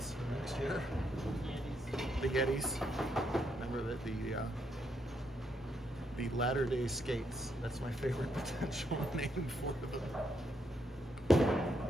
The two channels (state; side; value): normal; both; correlation 0.77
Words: next year. The Yetis. Remember that the Latter-day Skates. That's my favorite potential name for them.